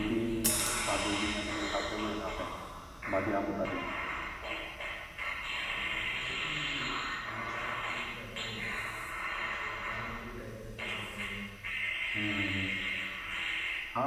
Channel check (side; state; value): both; identical; correlation 1.00